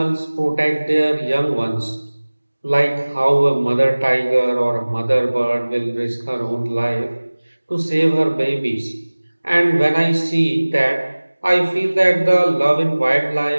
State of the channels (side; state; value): both; inverted; correlation -1.00